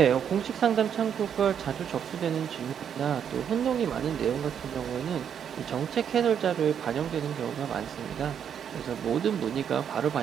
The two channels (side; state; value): left; quieter; 8.3 dB